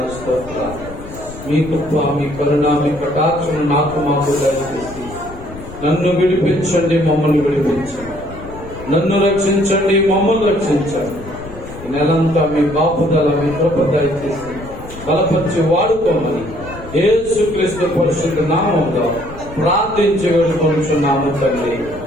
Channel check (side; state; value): left; noise; rumble, 15 dB below the sound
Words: స్తోత్రాలు. మీ కృప, మీ కరుణ, మీ కటాక్షను నాకు మాకు దయచేసి నన్ను విడిపించండి, మమ్మల్ని విడిపించండి. నన్ను రక్షించండి, మమ్మల్ని రక్షించండి. ఈ నెలంతా మీ బాపుదల, మీ కృప దయచేసి బలపరిచి వాడుకోమని యేసుక్రీస్తు పరిశుద్ధ నామములో ప్రార్థించి వేడుకొనుచున్నాము తండ్రి.